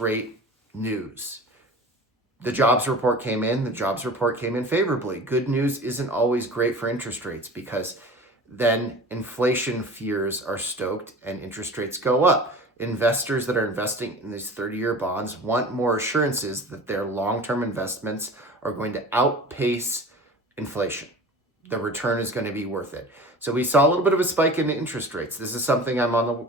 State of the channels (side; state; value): both; normal; correlation 0.38